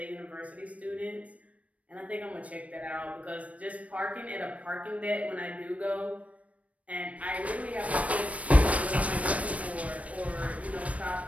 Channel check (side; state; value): left; late; 0.066 ms